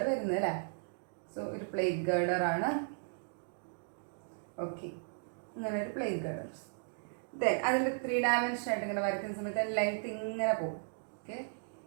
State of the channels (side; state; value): left; silent; digital silence